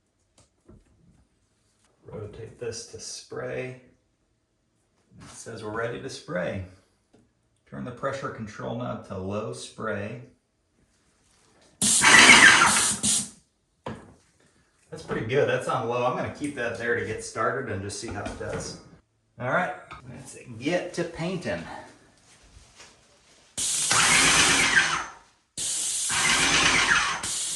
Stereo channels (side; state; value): both; identical; correlation 1.00